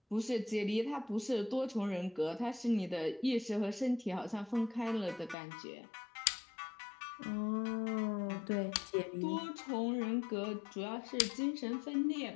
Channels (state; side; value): drops out; right; at 5.4 s